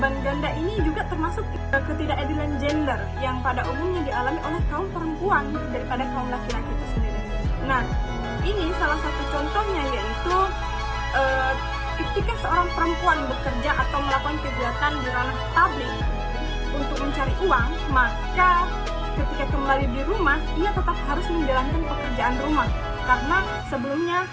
ganda ini juga termasuk ketidakadilan gender yang pada umumnya dialami oleh kaum perempuan daripada kaum laki-laki itu sendiri. Nah, ini salah satu contohnya yaitu ketika seorang perempuan bekerja atau melakukan kegiatan di ranah publik untuk mencari uang, maka ketika kembali di rumah, ia tetap harus menjalankan pekerjaan rumah karena sebelumnya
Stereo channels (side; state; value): both; identical; correlation 1.00